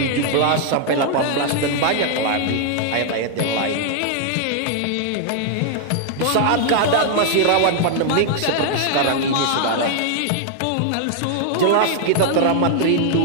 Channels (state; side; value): different; both; correlation 0.00